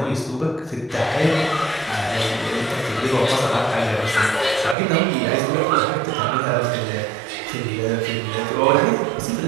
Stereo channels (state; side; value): drops out; left; at 4.8 s